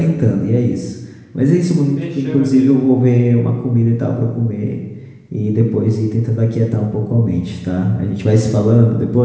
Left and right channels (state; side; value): identical; both; correlation 1.00